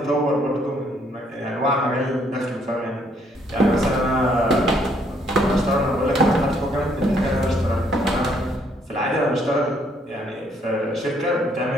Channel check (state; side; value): normal; both; correlation 0.68